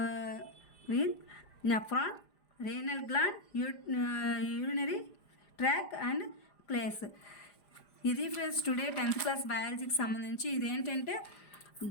nephron, renal gland, urinary tract and place. ఇది friends today 10th class బయాలజీకి సంబంధించి ఇదేంటంటే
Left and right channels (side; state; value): right; late; 5.0 ms